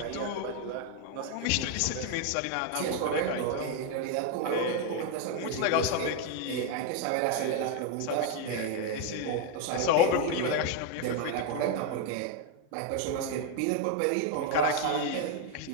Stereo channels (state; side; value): different; both; correlation 0.01